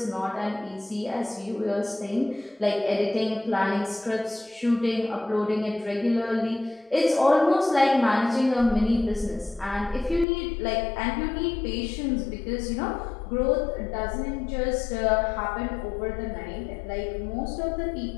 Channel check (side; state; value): right; drops out; at 10.2 s